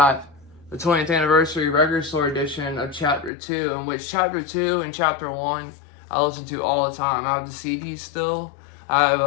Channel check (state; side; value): drops out; right; at 3.3 s